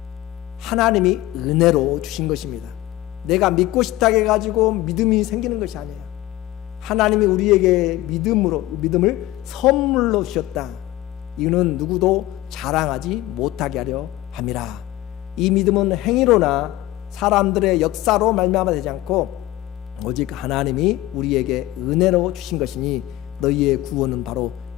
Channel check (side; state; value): right; quieter; 16.2 dB